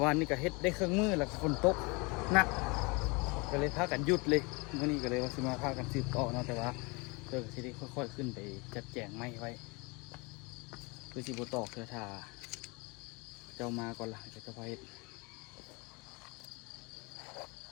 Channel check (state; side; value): quieter; right; 28.3 dB